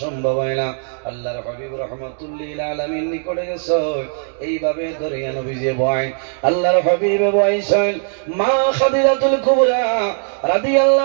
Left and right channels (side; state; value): left; silent; 61 dB below the other